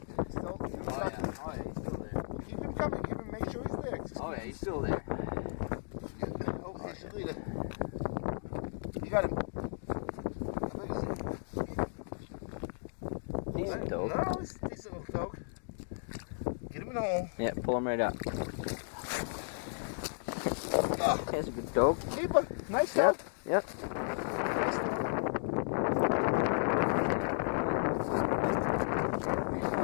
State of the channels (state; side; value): silent; right; digital silence